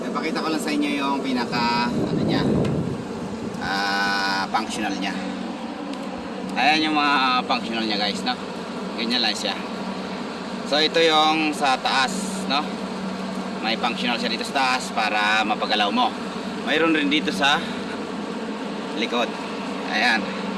ipakita ko lang sa inyo yung pinaka ano niya, functional niya. Ayan yung mga functional niya guys, no? Ganyan lang siya. So ito yung sa taas, no? May functional siya dito sa taas para mapagalaw mo. Mayroon rin dito sa likod. Ayan.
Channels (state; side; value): identical; both; correlation 1.00